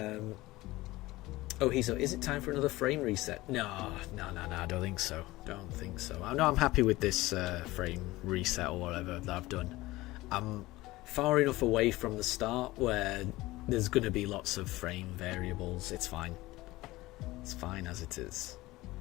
Is it time for another frame reset? No, I don't think so. I'm happy with this frame reset or whatever that I've done. I'm far enough away from the start where there's going to be lots of frame variables. It's fine. It's fine as it is.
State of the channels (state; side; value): quieter; right; 18.9 dB